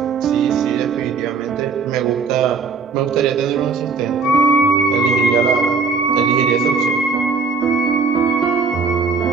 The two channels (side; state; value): left; quieter; 4.7 dB